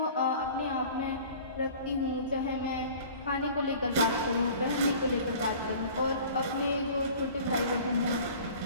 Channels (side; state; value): both; inverted; correlation -0.45